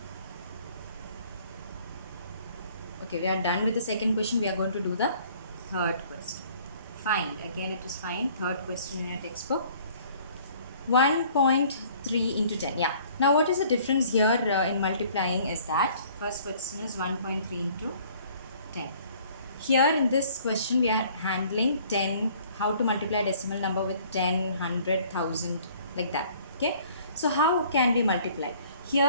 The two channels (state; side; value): inverted; both; correlation -0.56